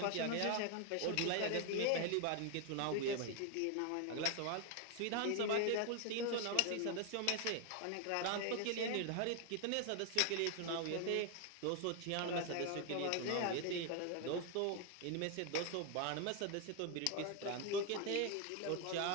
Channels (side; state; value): both; different; correlation 0.00